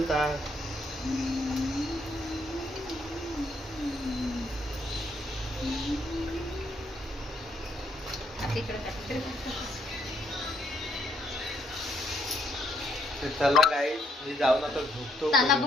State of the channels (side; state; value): both; normal; correlation 0.72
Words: का. चला गाई मी जाऊन आता झोपतो. ताला